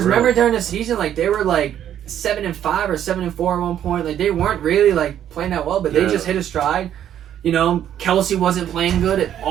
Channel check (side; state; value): left; quieter; 10.5 dB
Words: remember during the season, like they were like 7-5 or 7-4 at one point. Like they weren't really like playing that well, but they just hit a stride. Kelsey wasn't playing good